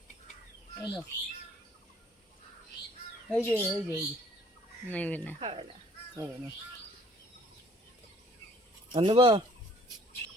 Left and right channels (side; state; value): both; normal; correlation 0.58